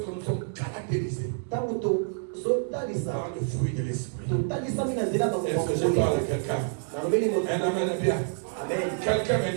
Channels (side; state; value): left; silent; digital silence